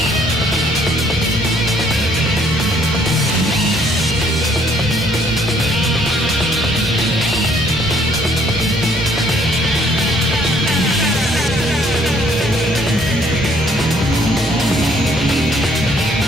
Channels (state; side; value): normal; both; correlation 0.63